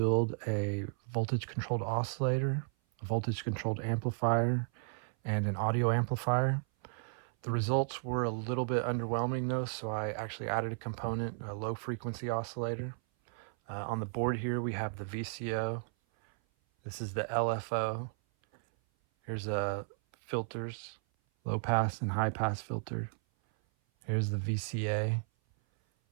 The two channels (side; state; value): left; silent; 55 dB below the other